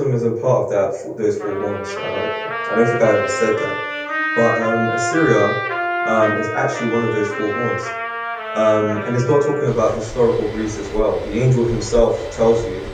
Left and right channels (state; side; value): identical; both; correlation 1.00